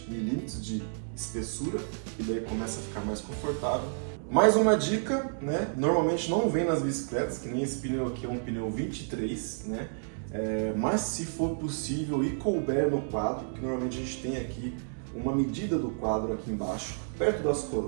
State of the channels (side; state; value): left; silent; digital silence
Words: milímetros de espessura, e daí começa a ficar mais confortável. Mais uma dica, né? Normalmente não vem nas bicicletas, que nem esse pneu aqui é um pneu 23, né? mas se for possível e couber no quadro, que normalmente a gente tem aqui uma medida do quadro aqui embaixo, perto das